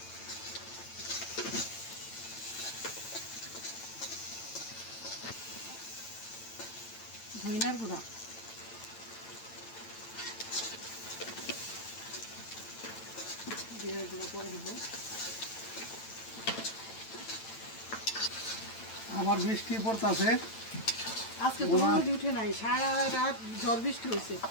ধনিয়ার গুঁড়া জিরার গুঁড়া করে দিব আমার বৃষ্টি পড়তাছে আজকে তো রোদ উঠে নাই সারা রাত ঝড় বৃষ্টি হয়েছে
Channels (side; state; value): right; late; 9.0 ms